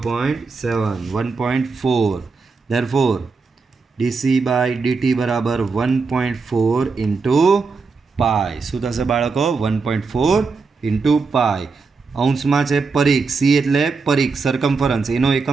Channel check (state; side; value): quieter; left; 4.5 dB